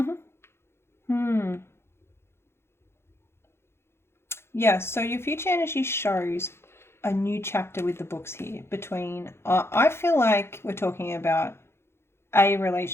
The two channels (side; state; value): right; late; 0.12 ms